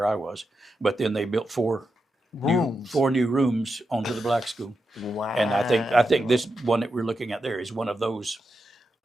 I was. But then they built four Rooms. new rooms onto the black school. Wow. And I think this one that we're looking at there is one of those.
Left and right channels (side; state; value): both; normal; correlation 0.87